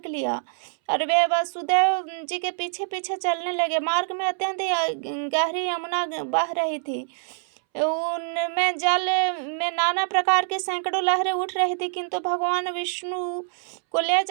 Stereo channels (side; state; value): left; silent; 62 dB below the other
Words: लिया और वे वसुदेव जी के पीछे पीछे चलने लगे। मार्ग में अत्यंत गहरी यमुना बह रही थी। उनमें जल में नाना प्रकार के सैकड़ों लहरें उठ रही थी, किंतु भगवान विष्णु को ले